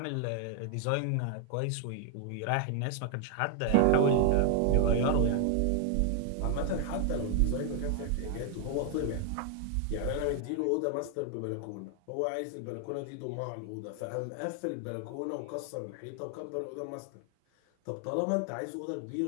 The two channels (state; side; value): different; both; correlation 0.00